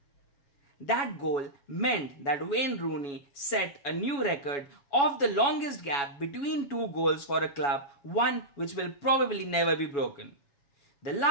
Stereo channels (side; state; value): right; late; 7.1 ms